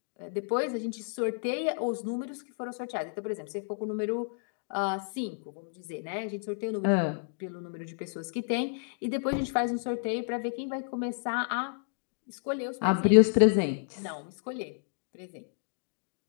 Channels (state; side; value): silent; right; digital silence